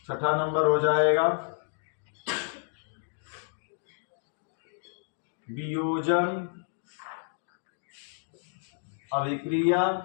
छठा नंबर हो जाएगा वियोजन अभिक्रिया।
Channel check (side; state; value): right; silent; digital silence